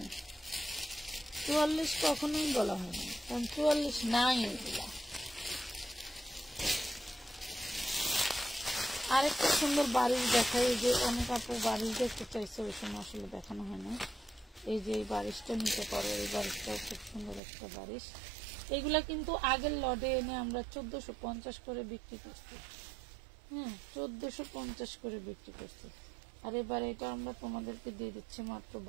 44 কখনোই বলা হয় না, কারণ 44 নাই এগুলা। আরেকটা সুন্দর বাড়ির দেখাই, যে অনেক আপু বাড়ি দেখতে চাইছে, ওই সময় আসলে দেখানো হয় না। এই যে এই বারিশটা নিতে পারো, এই বারিশটাও খুব সুন্দর একটা বারিশ। এগুলা কিন্তু আগের লটে এনে আমরা 1450 করে বিক্রি করছি। হ্যাঁ 1450 করে বিক্রি করছি, আর এবার এটা আমরা তোমাদেরকে দিয়ে দিচ্ছি মাত্র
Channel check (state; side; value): drops out; left; at 17.4 s